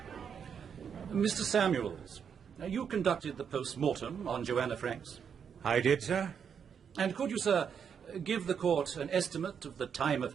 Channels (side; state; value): left; quieter; 7.3 dB